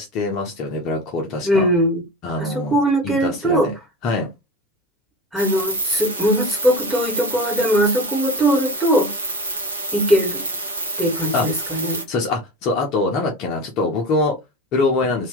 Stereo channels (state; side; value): normal; both; correlation 0.30